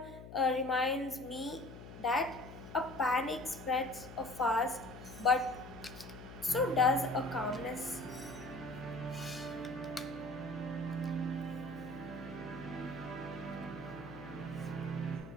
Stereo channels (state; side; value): noise; left; hum, 13 dB below the sound